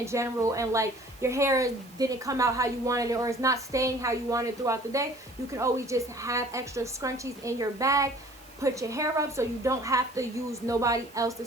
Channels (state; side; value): noise; right; hiss, 25 dB below the sound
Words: general and like your hair didn't come out how you wanted it, or it's not staying how you wanted throughout the day, you can always just have extra scrunchies in your bag. Put your hair up so you don't have to use nobody